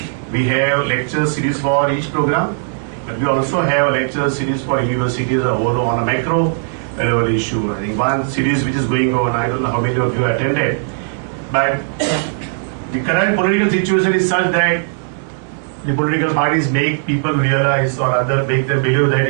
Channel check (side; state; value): left; silent; digital silence